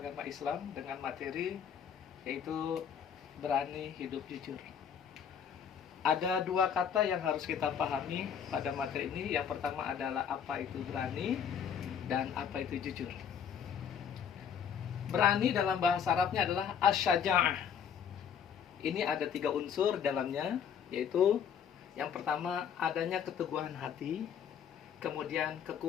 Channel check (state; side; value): quieter; right; 7.9 dB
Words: Islam dengan materi yaitu berani hidup jujur. Ada dua kata yang harus kita pahami pada materi ini. Yang pertama adalah apa itu berani dan apa itu jujur. Berani dalam bahasa Arabnya adalah asyaja'ah. Ini ada 3 unsur dalamnya, yaitu yang pertama adanya keteguhan hati, kemudian